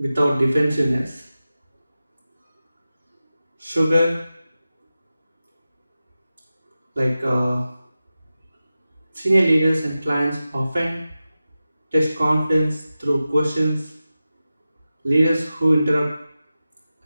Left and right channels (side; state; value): both; inverted; correlation -0.94